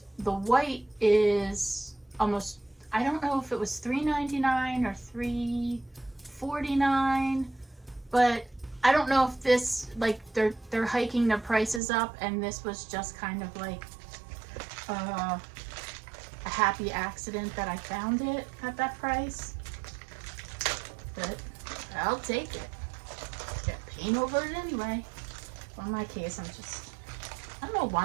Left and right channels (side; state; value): left; drops out; at 11.8 s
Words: the white is almost, I don't know if it was $3.99 or $3.49, but I don't know if this, like, they're hiking the prices up and this was just kind of like a happy accident that I found it at that price. But I'll take it. Get paint over it anyway. Well, in my case, I don't know